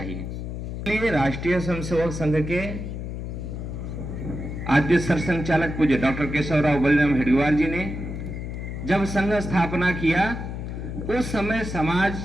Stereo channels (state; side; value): noise; left; hum, 6 dB below the sound